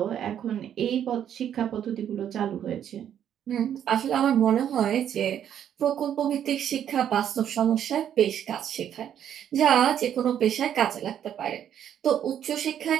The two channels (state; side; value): quieter; left; 9.7 dB